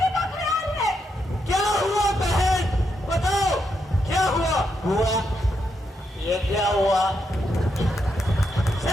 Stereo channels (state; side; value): normal; both; correlation 0.81